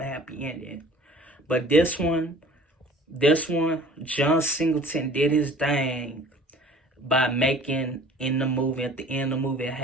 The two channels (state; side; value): normal; both; correlation 0.48